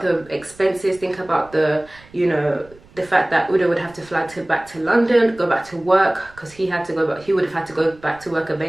the expenses, think about the, you know, the fact that Udo would have to fly back to London, go back to work, because he had to go back. He would have had to go back to work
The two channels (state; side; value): noise; right; rumble, 25 dB below the sound